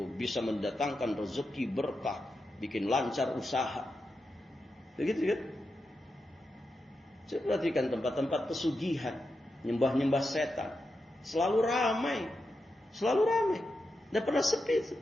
bisa mendatangkan rezeki berkah, bikin lancar usaha, begitu kan? Saya perhatikan tempat-tempat pesugihan, nyembah-nyembah setan. Selalu ramai. Tidak pernah sepi itu.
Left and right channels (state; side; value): normal; both; correlation 0.88